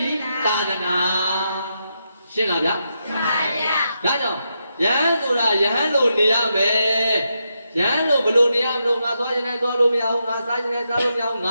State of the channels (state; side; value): inverted; both; correlation -0.83